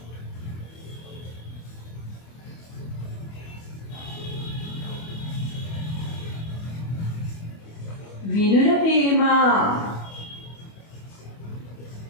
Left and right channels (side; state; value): right; late; 25 ms